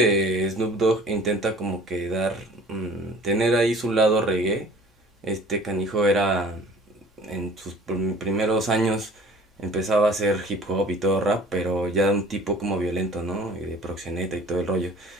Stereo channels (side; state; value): both; normal; correlation 0.48